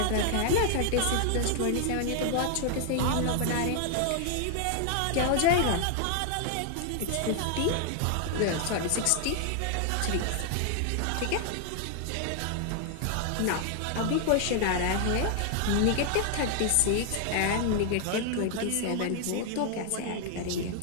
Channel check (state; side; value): different; both; correlation 0.00